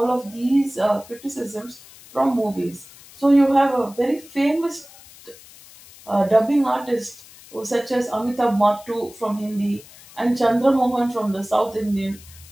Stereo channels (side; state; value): left; noise; hiss, 21 dB below the sound